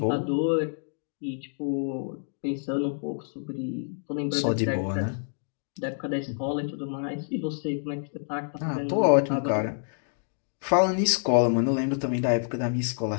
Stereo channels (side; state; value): right; silent; digital silence